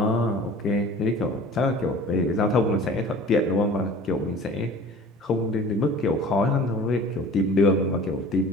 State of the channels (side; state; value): both; normal; correlation 0.44